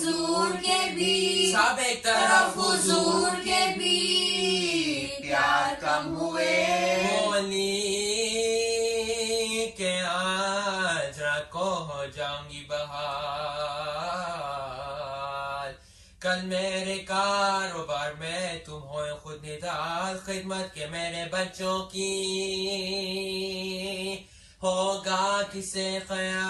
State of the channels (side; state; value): both; identical; correlation 1.00